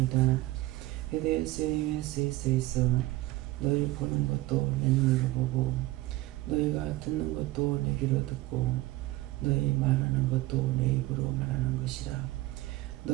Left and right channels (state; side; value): quieter; left; 18.1 dB